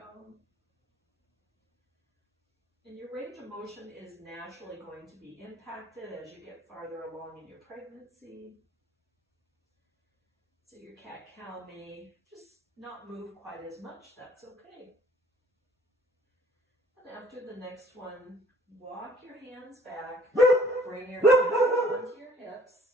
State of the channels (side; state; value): both; normal; correlation 0.57